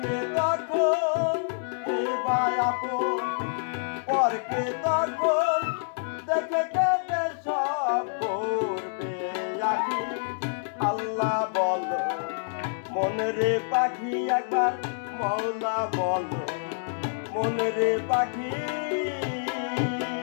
তখন, এবার আপন পরকে তখন, দেখে কেটে সব করবে আখি আল্লাহ বলো, মনে রে পাখি একবার মওলা বলো, মনে রে পাখি।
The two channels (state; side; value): silent; right; digital silence